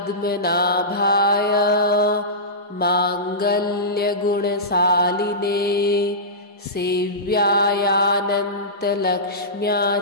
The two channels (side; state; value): both; normal; correlation -0.18